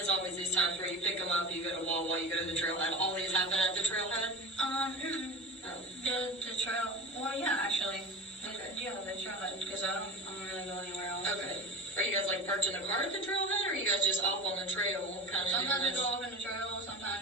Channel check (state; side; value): normal; both; correlation 0.31